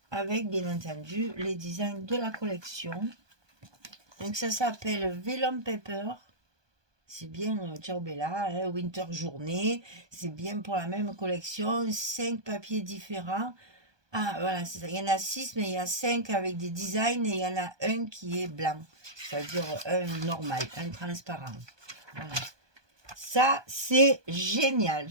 avec, bien entendu, les designs de la collection. Donc ça s'appelle Vellum Paper. C'est bien, ciao Bella, hein, Winter Journée. C'est bien pour la même collection. 5 papiers différents. Ah, voilà, c'est ça. Il y en a 6, mais il y a 5 avec des designs et il y en a un qui est blanc. C'est-à-dire un normal, un transparent. Voilà. Ça, c'est génial.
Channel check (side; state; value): left; late; 1.2 ms